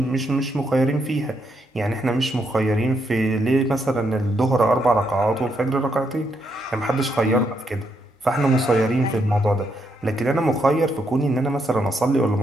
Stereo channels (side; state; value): both; normal; correlation 0.77